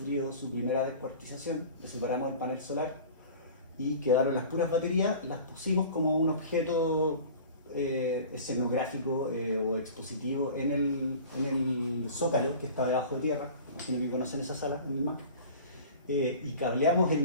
su primera descuartización, le separamos el panel solar y quedaron las puras baterías, las pusimos como un objeto escenográfico o expositivo en el Zócalo, que está debajo de tierra. Imagino que conocen esa sala en el MAC. Y cableamos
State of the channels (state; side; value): inverted; both; correlation -0.41